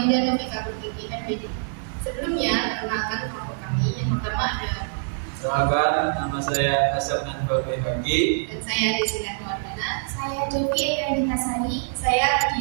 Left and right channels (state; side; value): silent; left; digital silence